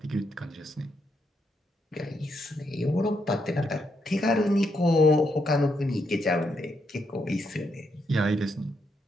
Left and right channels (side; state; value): both; normal; correlation 0.79